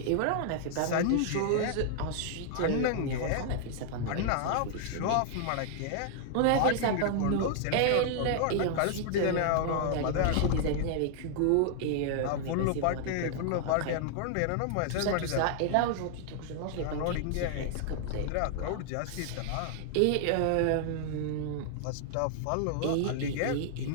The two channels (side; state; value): both; different; correlation -0.01